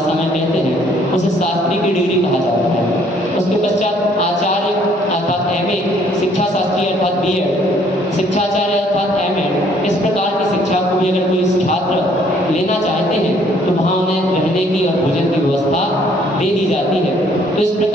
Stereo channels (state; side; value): normal; both; correlation 0.62